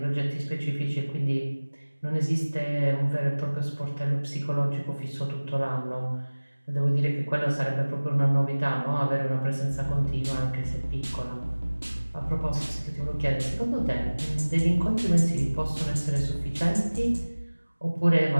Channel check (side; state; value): both; inverted; correlation -1.00